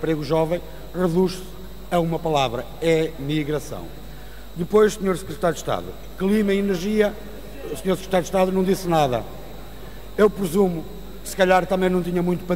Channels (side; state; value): both; identical; correlation 1.00